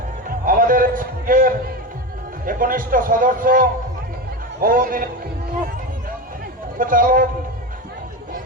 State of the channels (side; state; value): both; normal; correlation 0.21